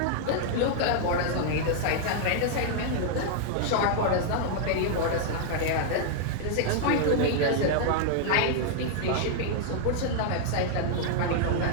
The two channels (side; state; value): both; different; correlation -0.01